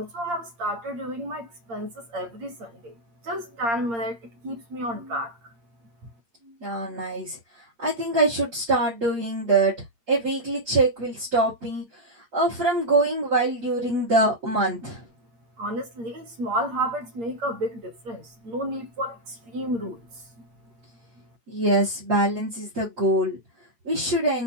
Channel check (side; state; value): left; late; 8.6 ms